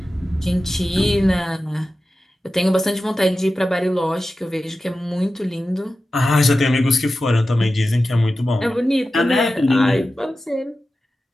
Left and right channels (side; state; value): both; normal; correlation 0.93